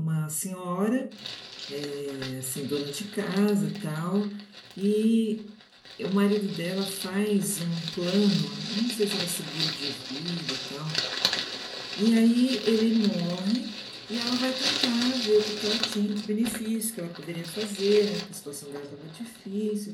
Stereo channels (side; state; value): both; identical; correlation 1.00